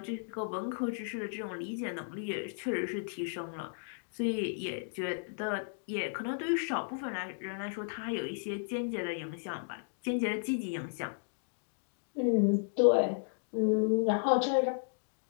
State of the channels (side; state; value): right; silent; digital silence